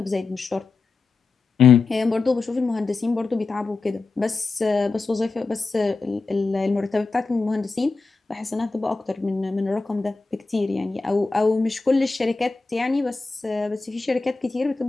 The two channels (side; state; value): right; quieter; 3.9 dB